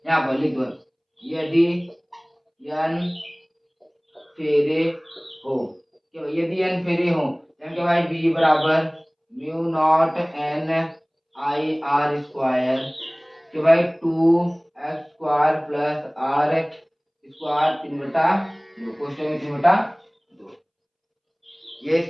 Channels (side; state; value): both; identical; correlation 1.00